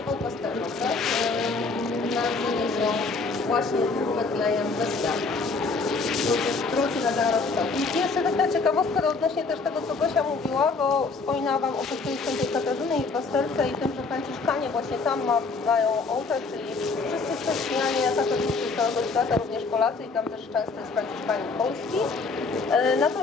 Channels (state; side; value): quieter; right; 4.2 dB